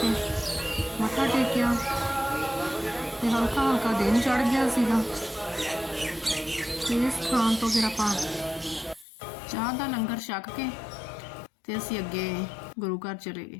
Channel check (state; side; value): drops out; right; at 9.1 s